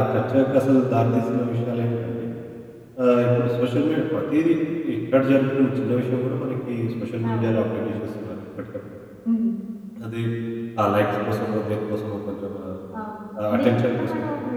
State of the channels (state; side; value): identical; both; correlation 1.00